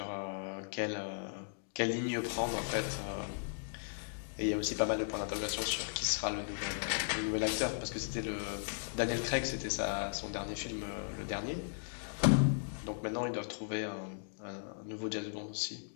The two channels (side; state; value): right; silent; digital silence